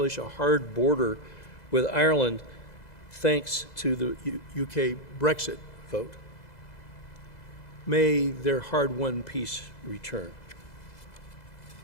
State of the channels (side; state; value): right; late; 2.0 ms